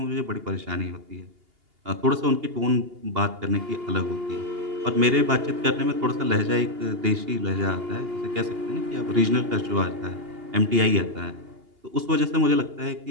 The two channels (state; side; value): late; left; 2.8 ms